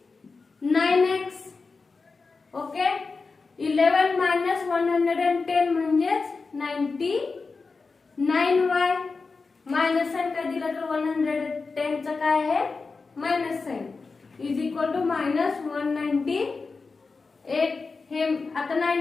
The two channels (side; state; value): right; quieter; 4.3 dB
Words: ओके, 11 मायनस 110 म्हणजेच 99y. मायनस साइन काय दिलं तर 110 चं काय आहे minus sign is equal to minus 198. हे आता